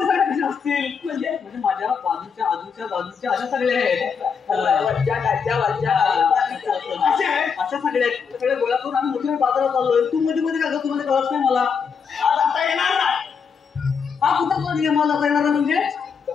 कसे असतील म्हणजे माझ्या बाजूच्या बाजूच्या अशा सगळ्या आहेत अशा सगळ्या गोळा करून आम्ही मोठ्या बाजारात चाललोय. तू मध्ये मध्ये का तुम्हाला कळत नाही मला आता येणार नाही. हा कुठं नियमाला आता येणार म्हणजे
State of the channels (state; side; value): quieter; right; 6.2 dB